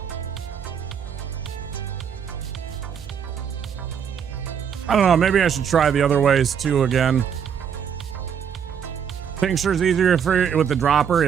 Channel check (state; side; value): quieter; left; 7.7 dB